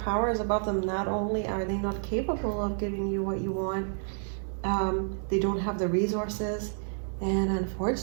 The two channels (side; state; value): left; silent; digital silence